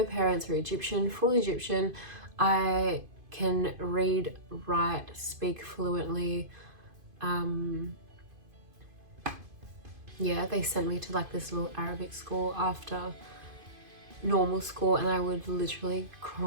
parents are Egyptian, full Egyptian. I can read, write, speak fluently. Yeah, they sent me to like this little Arabic school after normal school, and I would literally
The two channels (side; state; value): left; late; 2.5 ms